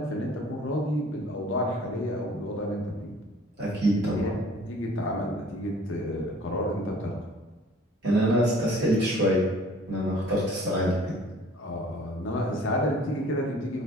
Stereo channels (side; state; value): both; normal; correlation 0.51